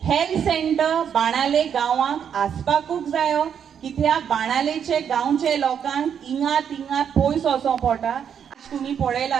Health centre बाणाले गांवांक आसपाकूच जायो, कित्याक बाणालेचे गांवचे लोकांक हिंगा तिंगा पयस वचों पडटा. तुमी पळयला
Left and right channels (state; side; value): quieter; left; 8.1 dB